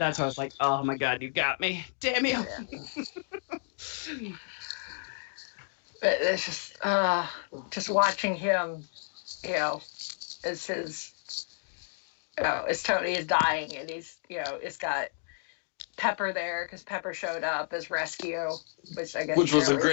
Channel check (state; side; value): silent; right; digital silence